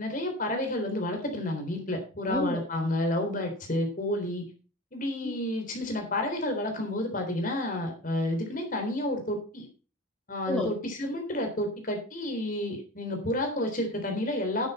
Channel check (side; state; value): both; normal; correlation 0.33